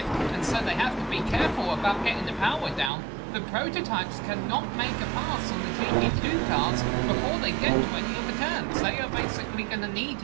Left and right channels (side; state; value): left; drops out; at 2.9 s